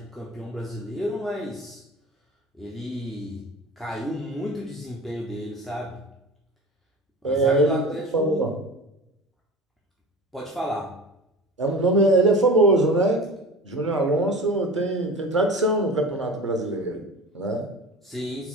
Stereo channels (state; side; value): normal; both; correlation 0.35